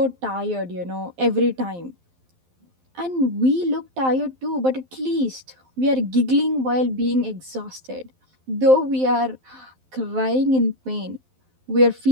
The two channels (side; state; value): left; late; 12 ms